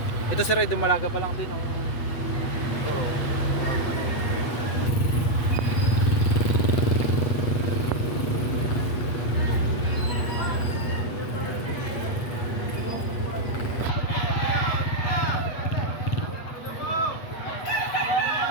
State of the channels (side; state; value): right; late; 8.2 ms